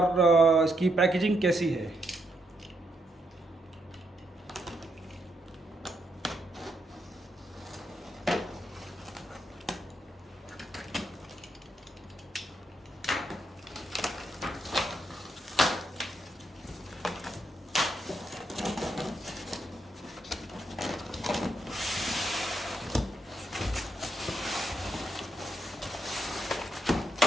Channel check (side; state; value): both; normal; correlation 0.79